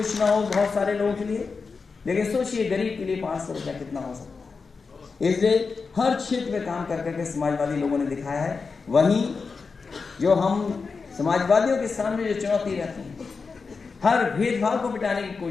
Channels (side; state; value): right; quieter; 4.8 dB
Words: ना हो बहुत सारे लोगों के लिए, लेकिन सोचिए गरीब के लिए 500 रुपया कितना हो सकता है। इसलिए हर क्षेत्र में काम कर करके समाजवादी लोगों ने दिखाया है। वहीं जो हम समाजवादियों के सामने जो चुनौती रहती है, हर भेदभाव को मिटाने की